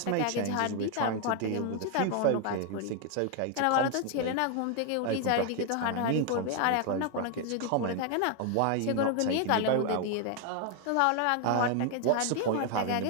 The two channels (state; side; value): different; both; correlation 0.00